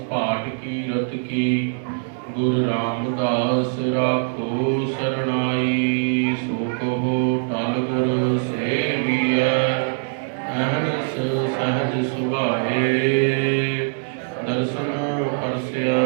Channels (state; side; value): silent; left; digital silence